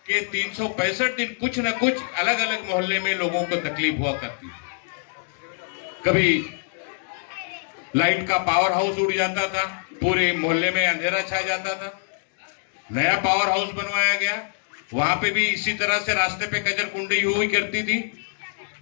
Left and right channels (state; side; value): silent; right; digital silence